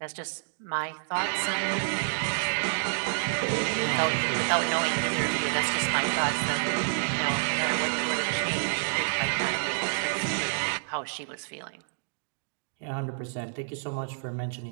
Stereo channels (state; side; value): silent; left; digital silence